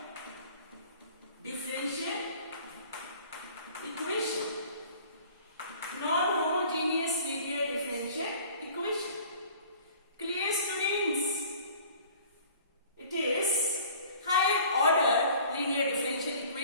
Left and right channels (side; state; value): both; inverted; correlation -0.49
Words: differential equation. Non-homogeneous linear differential equation. Clear, students? It is higher order linear differential